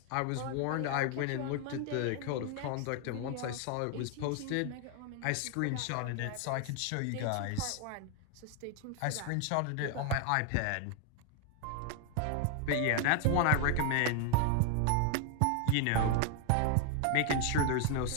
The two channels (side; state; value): both; different; correlation 0.01